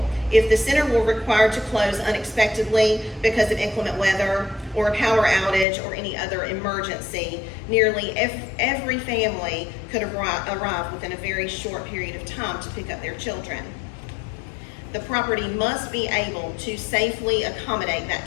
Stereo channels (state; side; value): drops out; right; at 5.7 s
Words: if the center were required to close unexpectedly because of inclement weather or a power outage or any other emergency, nearly every family could arrive within a very short period of time to pick up their children. The property must be able to safely accommodate that